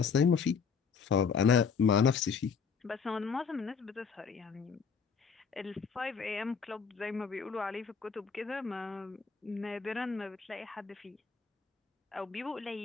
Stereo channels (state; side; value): quieter; right; 5.9 dB